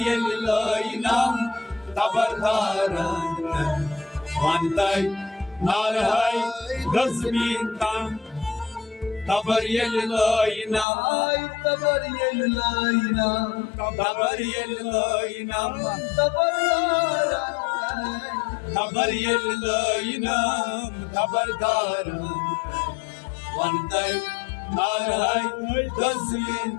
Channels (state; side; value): drops out; right; at 10.9 s